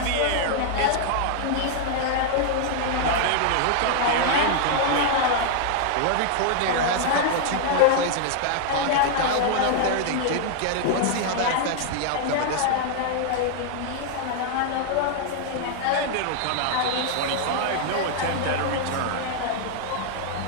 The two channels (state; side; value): different; both; correlation 0.00